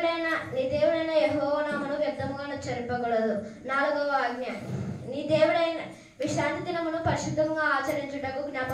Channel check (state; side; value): identical; both; correlation 1.00